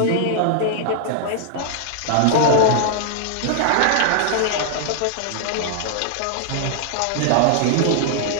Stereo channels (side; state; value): both; different; correlation -0.01